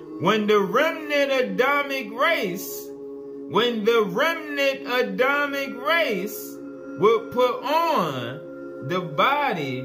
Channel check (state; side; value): identical; both; correlation 1.00